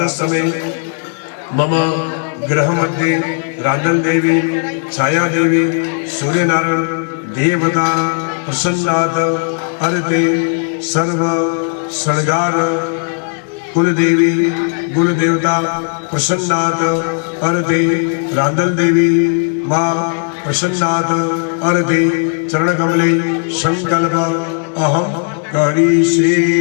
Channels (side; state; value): right; silent; 55 dB below the other